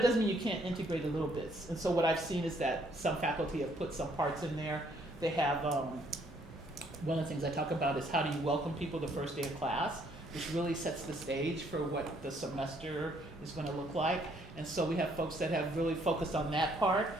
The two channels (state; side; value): normal; both; correlation 0.67